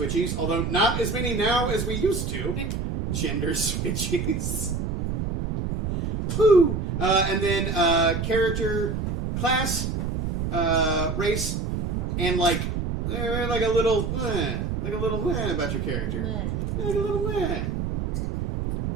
although not as many now as we used to. Gender switchies. Woo! And then character, class, race, and like a little about your character. Like a little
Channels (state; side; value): noise; right; rumble, 2 dB below the sound